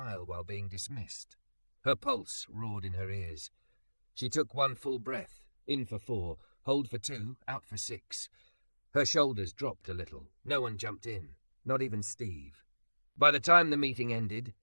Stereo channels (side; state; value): both; inverted; correlation -1.00